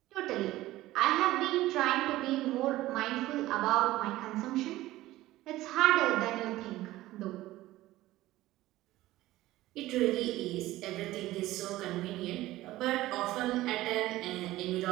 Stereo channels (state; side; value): quieter; left; 16.5 dB